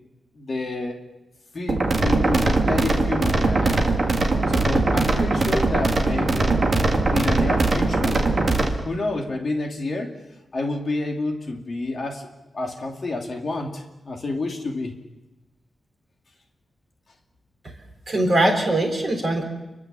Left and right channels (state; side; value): normal; both; correlation 0.88